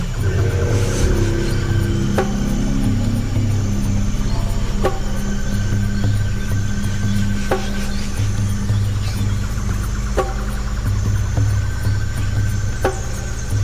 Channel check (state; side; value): identical; both; correlation 1.00